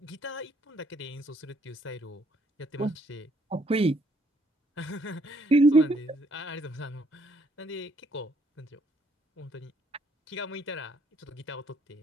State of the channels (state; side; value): normal; both; correlation 0.67